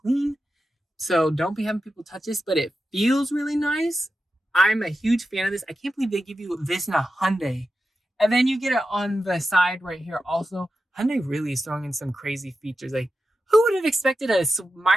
clean. So don't be having people touch this, but it feels really nice. I'm a huge fan of this. I can't believe they give you this in a Hyundai. And then you get it on the side right here also. Hyundai really is throwing in some crazy features. Like, who would have expected a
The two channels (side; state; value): both; normal; correlation 0.91